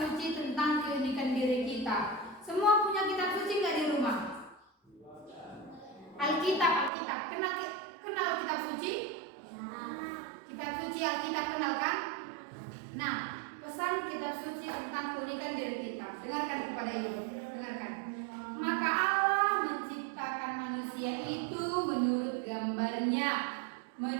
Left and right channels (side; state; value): left; drops out; at 6.9 s